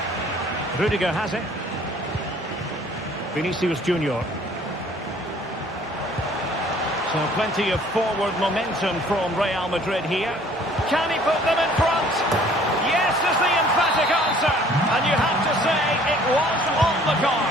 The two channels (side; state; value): both; normal; correlation 0.55